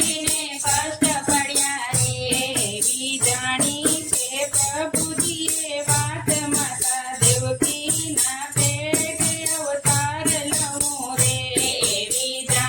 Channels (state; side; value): identical; both; correlation 1.00